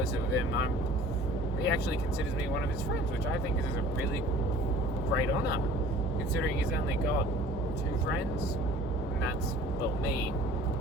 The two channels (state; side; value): normal; both; correlation 0.47